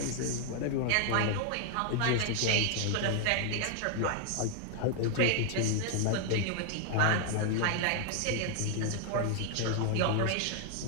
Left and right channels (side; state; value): both; different; correlation 0.00